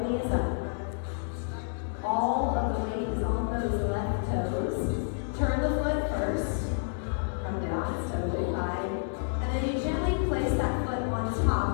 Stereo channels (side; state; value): right; silent; 58 dB below the other